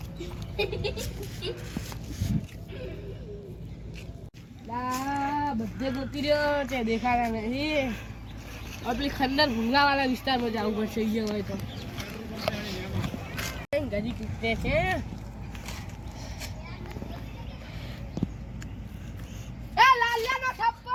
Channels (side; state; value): both; identical; correlation 1.00